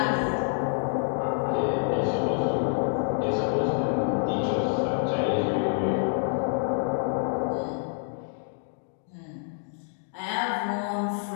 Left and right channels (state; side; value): silent; right; 60 dB below the other